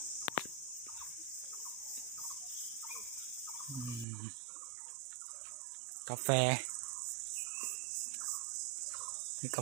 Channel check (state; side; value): drops out; left; at 4.0 s